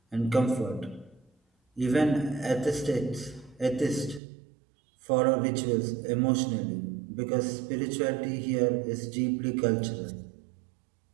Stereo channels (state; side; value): drops out; left; at 4.2 s